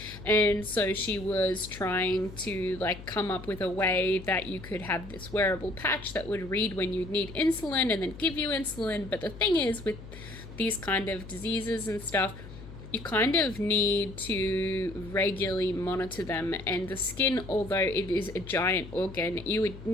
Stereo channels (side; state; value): left; noise; hum, 14 dB below the sound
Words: And so she was trying to come up with a way that you could have this wearable patch that would read when you'd need insulin and then give you insulin. But the thing is, with these kind of diseases and stuff, you kind of need to regularly monitor them, and the skin, although it is a giant organ, you would